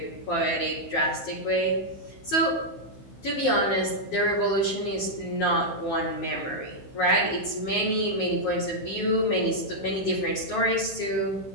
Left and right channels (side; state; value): right; late; 15 ms